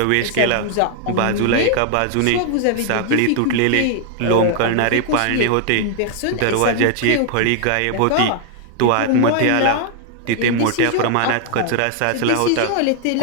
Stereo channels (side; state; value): both; different; correlation 0.00